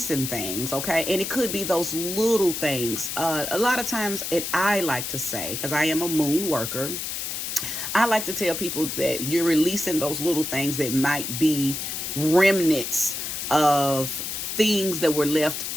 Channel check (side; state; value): left; noise; hiss, 4 dB below the sound